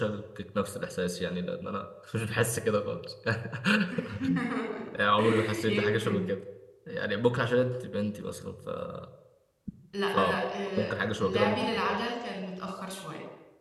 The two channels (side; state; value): both; identical; correlation 1.00